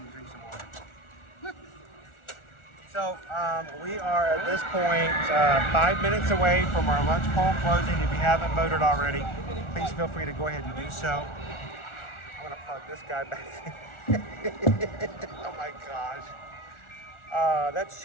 to drink some water. So we are at this point 5 minutes away from our lunch poll closing. If you haven't voted already, please feel free to go ahead and do so. I'm gonna plug this guy back in. Oh my gosh. That's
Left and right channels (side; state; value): right; late; 1.4 ms